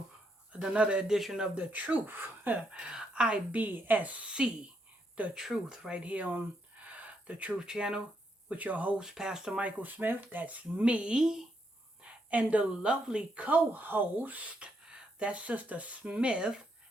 another edition of The Truth. IBSC, The Truth, right here on The Truth Channel with your host, Pastor Michael Smith. That's me. And the lovely co host, that's Sister Smith.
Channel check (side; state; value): both; normal; correlation 0.77